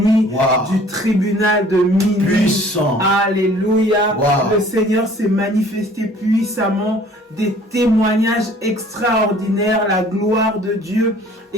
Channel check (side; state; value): both; normal; correlation 0.53